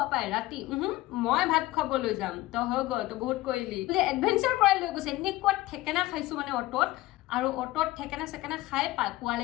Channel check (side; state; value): right; quieter; 17.5 dB